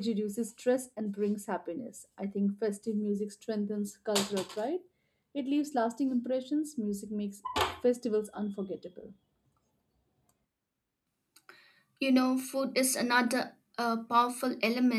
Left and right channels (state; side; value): identical; both; correlation 1.00